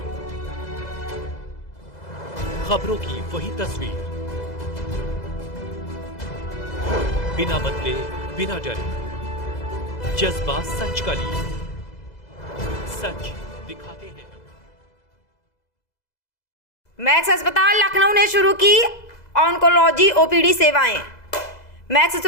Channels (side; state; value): right; late; 2.0 ms